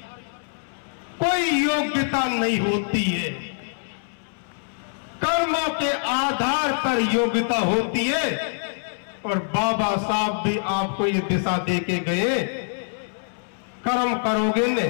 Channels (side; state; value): right; silent; 62 dB below the other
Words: कोई योग्यता नहीं होती है, कर्मों के आधार पर योग्यता होती है। और बाबा साहब भी आपको ये दिशा दे के गए, कर्म करोगे ने